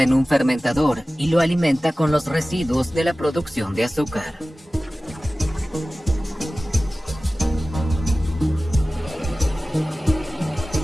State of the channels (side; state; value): both; normal; correlation 0.97